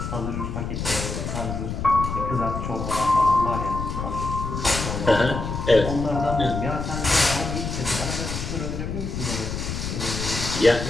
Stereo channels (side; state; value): left; noise; rumble, 4 dB below the sound